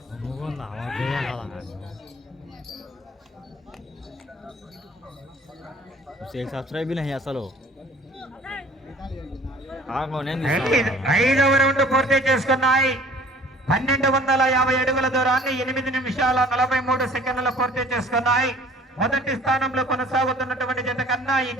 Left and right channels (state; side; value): normal; both; correlation 0.51